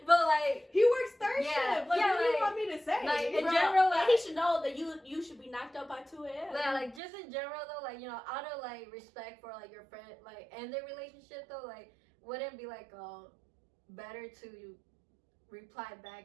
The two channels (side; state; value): left; drops out; at 7.0 s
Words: but like He works third Yeah, shift. Like, yeah, what do you like- want me to say? like, in Bro, general, like, he should know that you should be knocked out by 2 a.m. yeah, like just in general though, like you know, out of like respect for like your friend, like and their relationship though, like wouldn't it be like better to reply